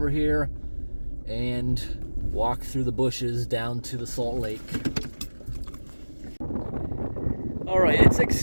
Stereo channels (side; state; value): both; inverted; correlation -1.00